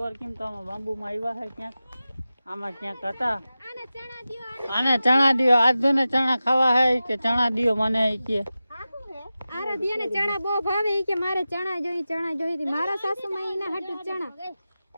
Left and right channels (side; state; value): both; inverted; correlation -0.94